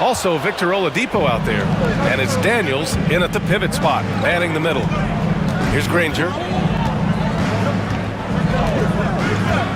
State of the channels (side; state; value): both; identical; correlation 1.00